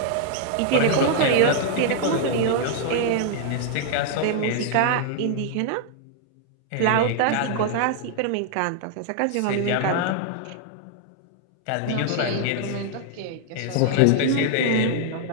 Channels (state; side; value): different; both; correlation 0.00